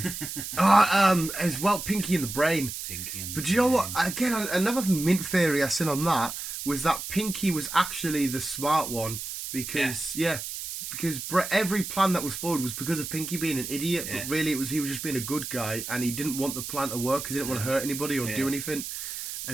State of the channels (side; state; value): right; noise; hiss, 7 dB below the sound